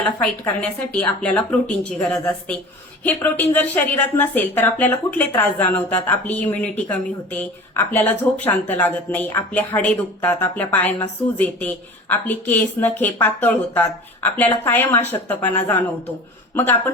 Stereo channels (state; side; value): normal; both; correlation 0.39